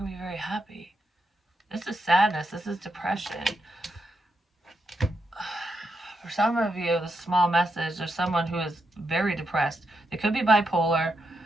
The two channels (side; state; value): both; normal; correlation 0.83